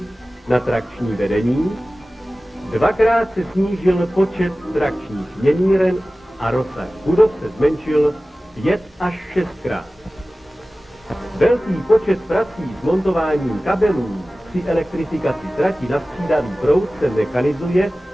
na trakční vedení, dvakrát se snížil počet trakčních měníren a rozsah budov se zmenšil 5 až 6krát. Velký počet prací s montováním kabelů při elektrifikaci trati na střídavý proud se mechanizuje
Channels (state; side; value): normal; both; correlation 0.97